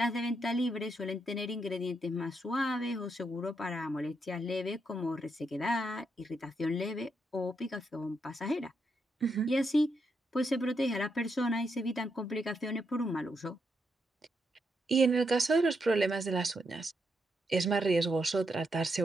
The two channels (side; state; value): both; normal; correlation 0.81